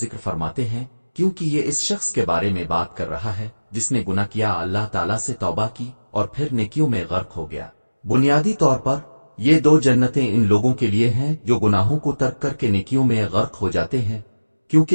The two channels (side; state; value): both; inverted; correlation -1.00